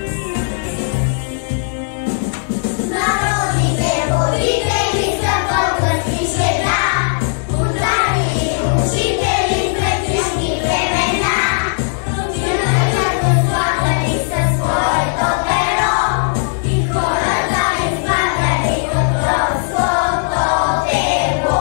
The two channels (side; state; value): right; silent; digital silence